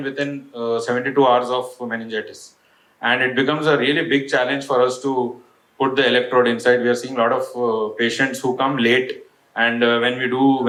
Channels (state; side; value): identical; both; correlation 1.00